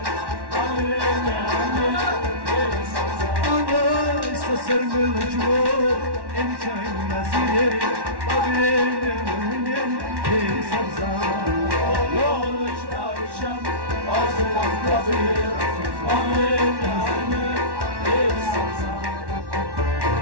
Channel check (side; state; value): left; late; 1.1 ms